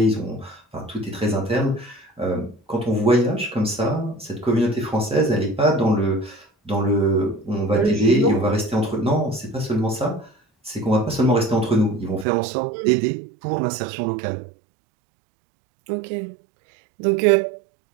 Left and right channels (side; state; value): left; drops out; at 12.2 s